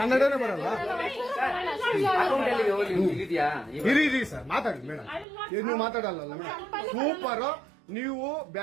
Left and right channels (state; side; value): drops out; left; at 5.2 s